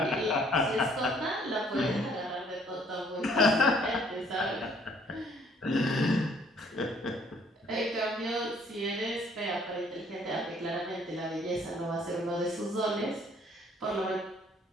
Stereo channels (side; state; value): both; normal; correlation 0.61